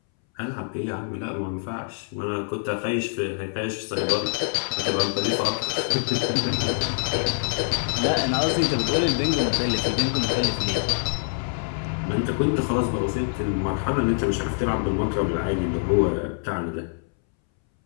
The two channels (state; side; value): silent; right; 62 dB below the other